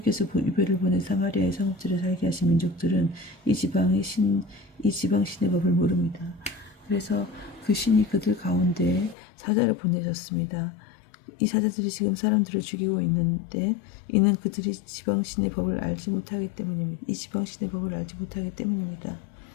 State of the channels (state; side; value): drops out; right; at 9.2 s